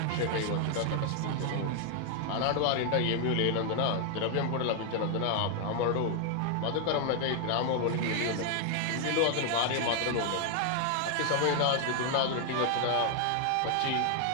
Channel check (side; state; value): both; different; correlation 0.00